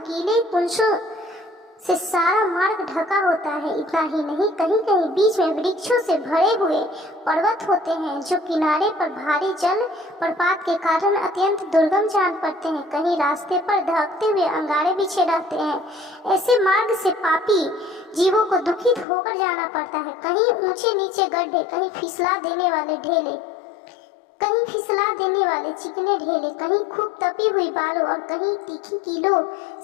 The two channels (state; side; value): drops out; right; at 19.1 s